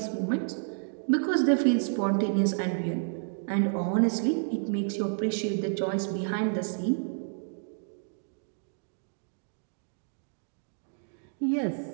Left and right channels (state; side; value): silent; left; digital silence